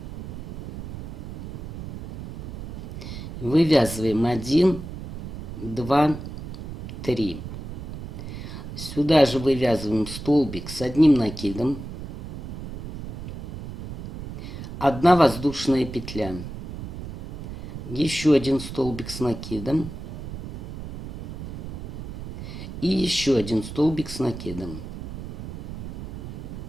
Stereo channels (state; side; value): noise; right; rumble, 9 dB below the sound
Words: вывязываем 1, 2, 3. Сюда же вывязываем столбик с одним накидом, 1 воздушная петля, еще один столбик с накидом и еще один столбик с накидом,